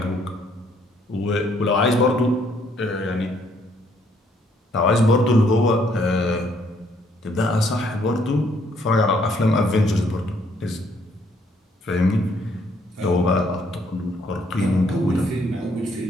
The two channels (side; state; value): both; normal; correlation 0.67